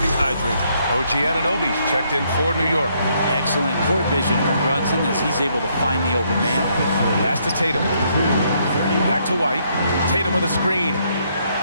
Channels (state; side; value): inverted; both; correlation -0.72